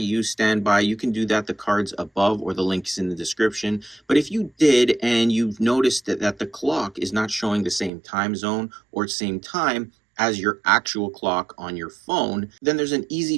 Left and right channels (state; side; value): drops out; left; at 7.9 s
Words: standby, you can do that. The card's above or the link is in the description. But if you did and you've noticed that the clock is not showing the same time zone or same time as your actual clock on your phone, then there's an easy